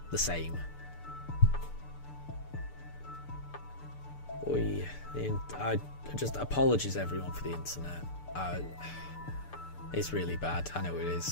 the same. I just apologies everyone for the internet. It's really bad. I know it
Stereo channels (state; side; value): late; right; 6.8 ms